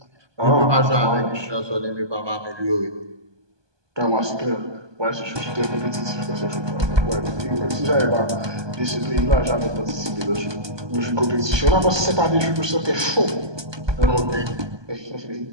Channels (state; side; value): late; left; 1.2 ms